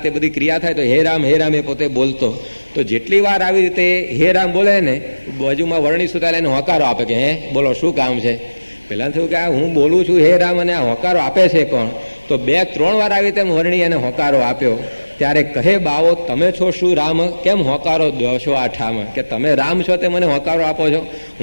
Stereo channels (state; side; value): inverted; both; correlation -1.00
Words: તે બધી ક્રિયા થાય તો હે રામ એ પોતે બોલતો. તો જેટલી વાર આવી રીતે હે રામ બોલે ને બાજુમાં વર્ણી સુતાલે એને હોકારો આપે કે હે બોલો શું કામ છે. પહેલાં થયું કે આ હું બોલું છું હે રામ અને આ હોકારો આપે છે કોણ? તો 2-3 વાર આવી રીતે વર્ણી એને હોકારો આપ્યો. ત્યારે કહે બાવો તમે છો શું રામ, કેમ હોકારો દો છો આ ઠામ? કે તમે રામ છો તે મને હોકારો આપો છો?